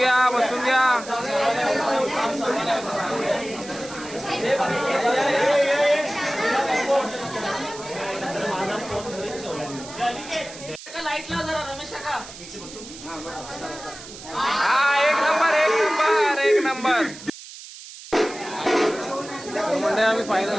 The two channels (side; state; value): right; noise; hiss, 15 dB below the sound